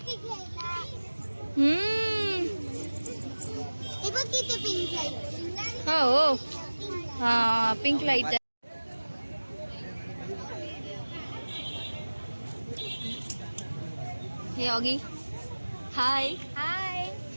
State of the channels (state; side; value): inverted; both; correlation -1.00